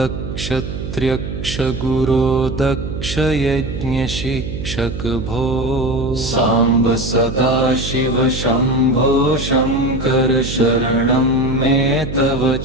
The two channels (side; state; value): right; noise; hum, 7 dB below the sound